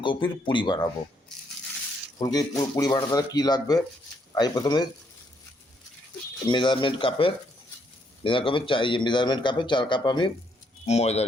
পুরি বানাবো। ফুলকপির পুরি বানাতে কী লাগবে, আমি প্রথমে মেজারমেন্ট কাপের 4 কাপ আমি ময়দা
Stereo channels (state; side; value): normal; both; correlation 0.72